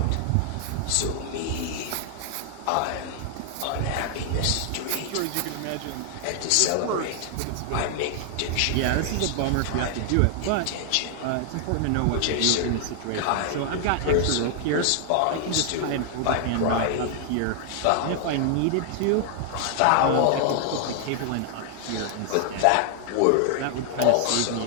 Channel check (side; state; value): both; different; correlation 0.00